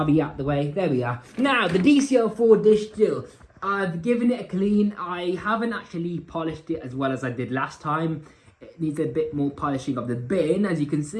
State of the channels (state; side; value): identical; both; correlation 1.00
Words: out the way. There we are. Now, the DC04 dish still. I've given it a clean. I haven't actually polished it as well as I did last time. It needs a bit more polishing of the bin, as you can